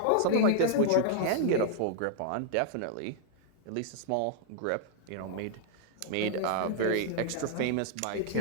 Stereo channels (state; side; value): different; both; correlation -0.01